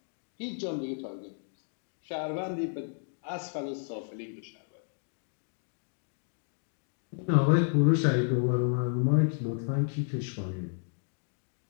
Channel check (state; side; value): silent; right; digital silence